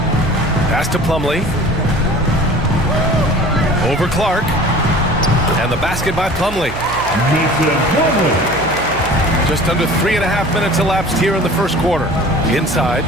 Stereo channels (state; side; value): noise; right; hum, 12 dB below the sound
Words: Pass to Plumlee. Over Clark. And the basket by Plumlee. Just under 3.5 minutes elapsed here in the first quarter. Inside.